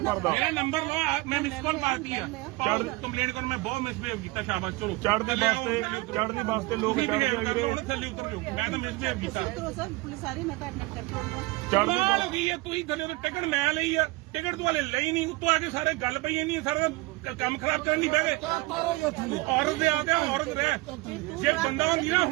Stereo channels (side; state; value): left; quieter; 21.9 dB